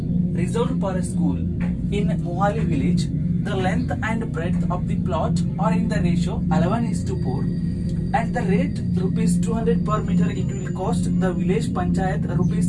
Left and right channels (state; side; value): identical; both; correlation 1.00